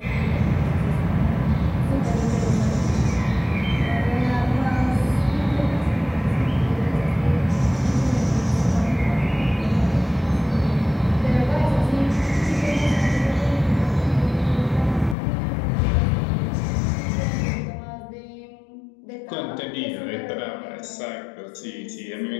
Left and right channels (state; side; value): drops out; right; at 15.2 s